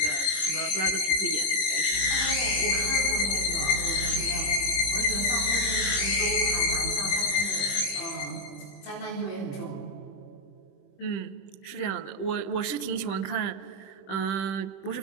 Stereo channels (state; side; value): late; right; 21 ms